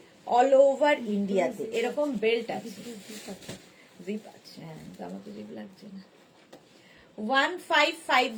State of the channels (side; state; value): both; identical; correlation 1.00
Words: all over ইন্ডিয়াতে। এরকম বেল্ট আছে, জিপ আছে। হ্যাঁ আমাকে জিপ লাগছে না।